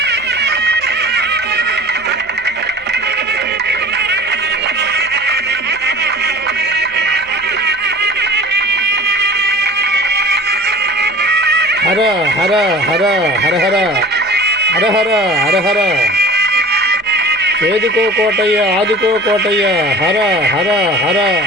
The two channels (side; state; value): right; noise; hum, 29 dB below the sound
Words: హర హర హర హర హర హర హర హర హర. ఏదుకో కోటయ్య ఆదుకో కోటయ్య. హర హర హర